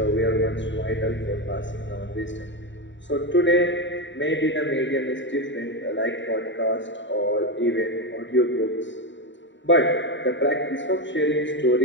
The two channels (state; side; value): late; right; 0.54 ms